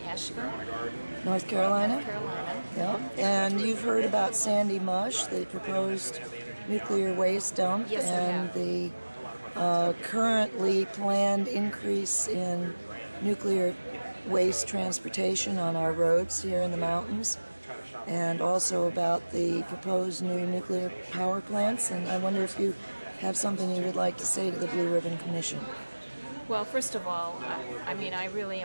Asheville, North Carolina? North Carolina. Yeah. And you've heard about Sandy Mush, the proposed nuclear waste dump, Yes, and the currently planned increase in nuclear waste transportation on our roads here in the mountains, and also about the proposed new nuclear power plants. And I wonder if you have something you would like to say to the Blue Ribbon Commission. Well, first of all, I really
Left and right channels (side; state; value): both; inverted; correlation -1.00